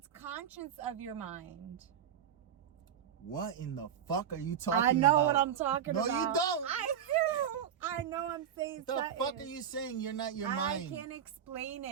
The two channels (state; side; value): quieter; left; 8.8 dB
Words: conscious of your mind. What in the fuck are you talking about? I know what I'm talking about. No, you don't. I do. I know I'm saying what the fuck are you saying? You're not your mind. I can't explain